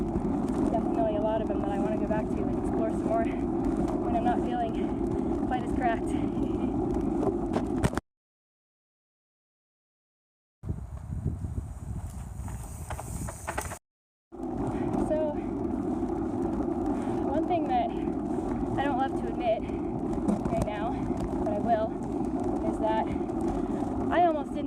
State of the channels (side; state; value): both; identical; correlation 1.00